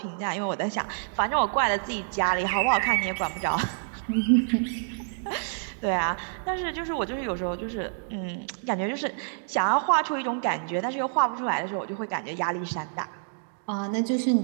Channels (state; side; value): silent; left; digital silence